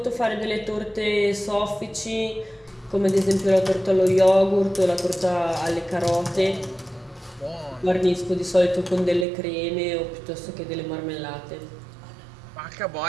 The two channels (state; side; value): drops out; left; at 9.2 s